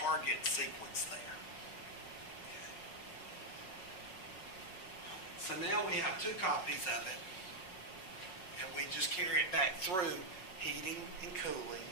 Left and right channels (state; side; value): late; right; 5.5 ms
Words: sequence there. So now we have 2 copies of it, and we just carry it back through heating and cooling,